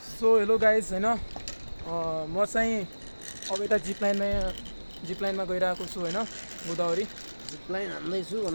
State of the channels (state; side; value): inverted; both; correlation -1.00